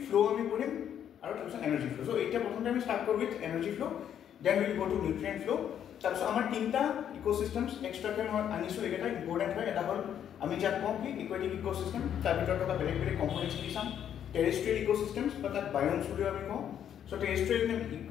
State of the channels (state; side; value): quieter; right; 9.5 dB